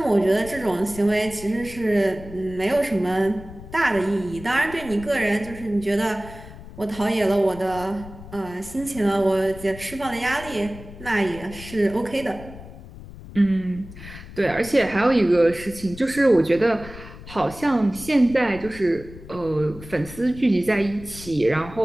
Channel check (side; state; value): left; noise; rumble, 16 dB below the sound